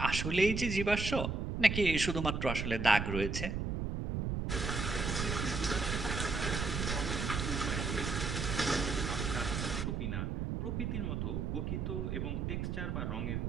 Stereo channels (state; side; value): noise; right; rumble, 2 dB below the sound